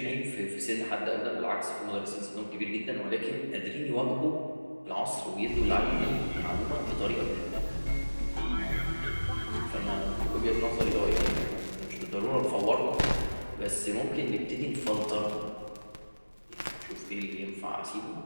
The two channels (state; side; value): inverted; both; correlation -1.00